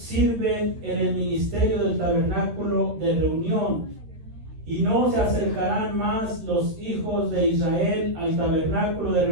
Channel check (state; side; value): late; left; 13 ms